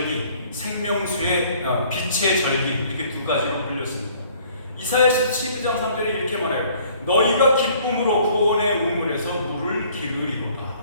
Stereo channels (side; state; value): both; inverted; correlation -0.57